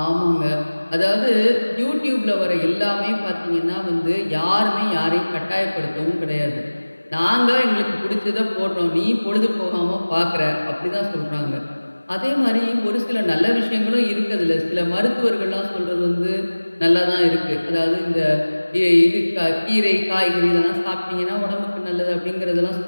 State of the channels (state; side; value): inverted; both; correlation -1.00